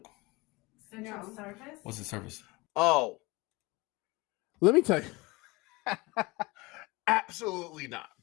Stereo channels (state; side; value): quieter; right; 23.6 dB